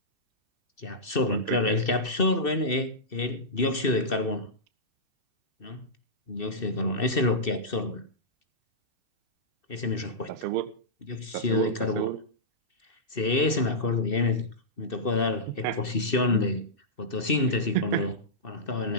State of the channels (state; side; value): late; right; 2.6 ms